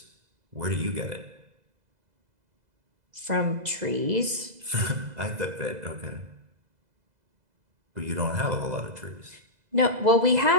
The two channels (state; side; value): late; left; 2.0 ms